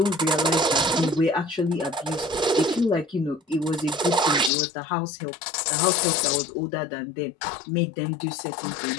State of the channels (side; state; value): right; drops out; at 4.5 s